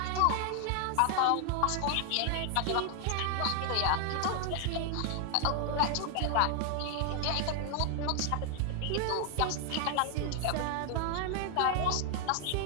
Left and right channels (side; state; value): both; different; correlation 0.00